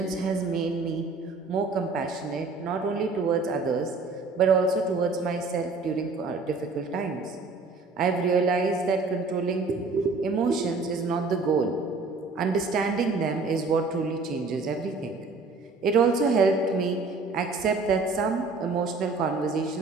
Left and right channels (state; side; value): quieter; left; 3.9 dB